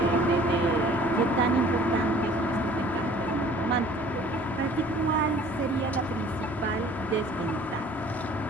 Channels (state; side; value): normal; both; correlation 0.51